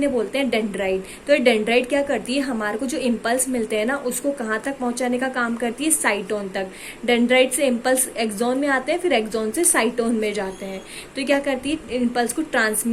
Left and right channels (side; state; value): both; identical; correlation 1.00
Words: बोलते हैं डेंड्राइट। तो ये डेंड्राइट क्या करती है? हमारे को जो इम्पल्स मिलते हैं ना, उसको कहाँ तक पहुंचाने का काम करती है? साइटोन तक। डेंड्राइट से इम्पल्स एक्सोन में आते हैं, फिर एक्सोन से साइटोन में जाते हैं। तो क्या करती है? इम्पल्स को